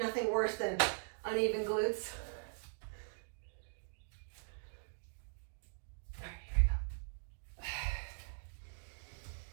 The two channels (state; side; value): silent; left; digital silence